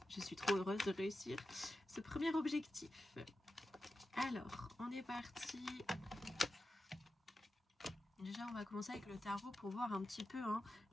suis trop heureuse de réussir ce premier objectif. Alors, on est parti. Déjà, on va commencer avec le tarot pour voir un petit peu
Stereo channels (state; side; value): normal; both; correlation 0.91